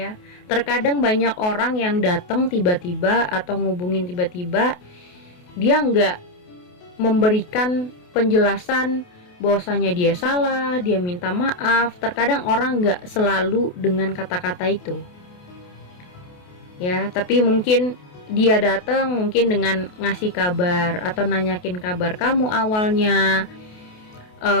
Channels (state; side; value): late; right; 28 ms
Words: terkadang banyak orang yang datang tiba-tiba atau ngubungin tiba-tiba, dia nggak memberikan penjelasan bahwasanya dia salah, dia minta maaf. Terkadang orang nggak selalu dengan kata-kata itu. Ya, tapi mungkin dia datang mungkin dengan ngasih kabar atau nanyakin kabar kamu awalnya.